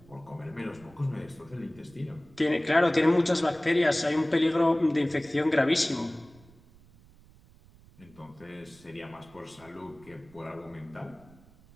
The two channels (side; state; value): right; noise; rumble, 25 dB below the sound